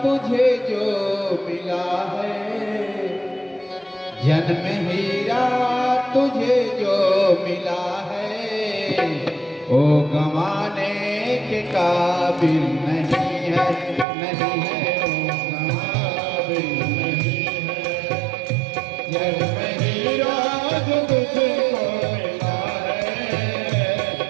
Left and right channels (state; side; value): drops out; left; at 14.1 s